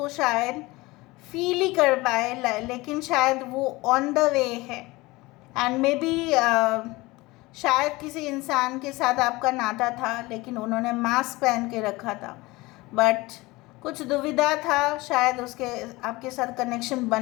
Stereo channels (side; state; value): right; quieter; 21.5 dB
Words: शायद फील ही कर पाए, लेकिन शायद वो ऑन द वे है। एंड मे बी शायद किसी इंसान के साथ आपका नाता था लेकिन उन्होंने मास्क पहन के रखा था, बट कुछ दुविधा था, शायद उसके आपके साथ कनेक्शन